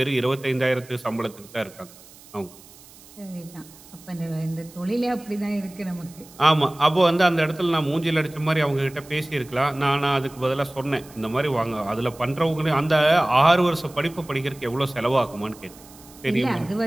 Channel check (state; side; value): noise; right; hiss, 22 dB below the sound